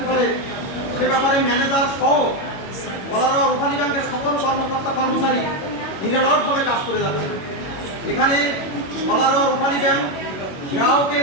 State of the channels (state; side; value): late; right; 21 ms